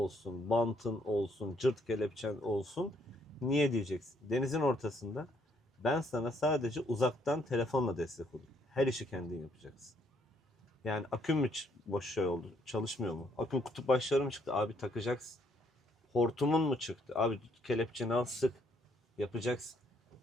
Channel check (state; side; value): normal; both; correlation 0.69